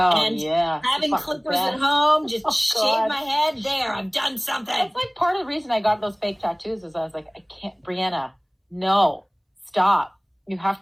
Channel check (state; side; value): identical; both; correlation 1.00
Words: and yeah. having clippers at home, just shave my head. There, I've done something. That's like part of the reason I got those fake tattoos is I was like, I can't, Brianna, no, stop. You have